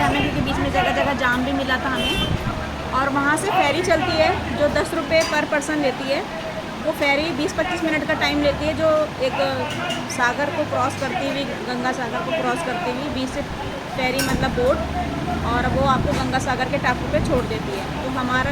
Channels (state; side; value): identical; both; correlation 1.00